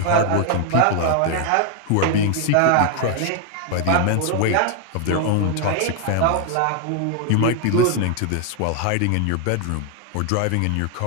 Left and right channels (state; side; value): different; both; correlation 0.00